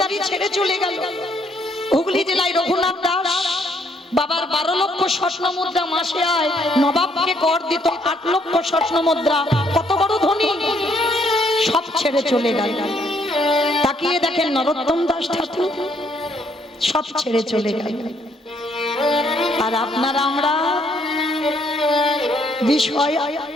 ছেড়ে চলে গেল। হুগলি জেলায় রঘুনাথ দাস বাবার 12 লক্ষ স্বর্ণ মুদ্রা মাসে আয়, নবাবকে কর দিত 8 লক্ষ স্বর্ণ মুদ্রা। কত বড় ধনী, সব ছেড়ে চলে গেল। তাকিয়ে দেখেন নরোত্তম দাস ঠাকুর, সব ছেড়ে চলে গেল। আর আপনারা আমরা বিষয়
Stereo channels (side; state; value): both; normal; correlation 0.69